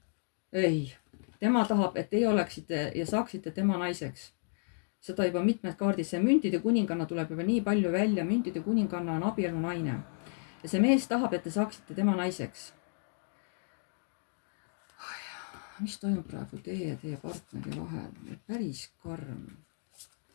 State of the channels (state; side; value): silent; right; digital silence